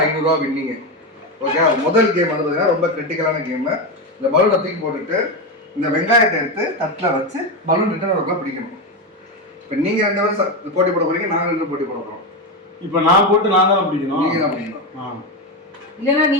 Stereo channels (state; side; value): normal; both; correlation 0.12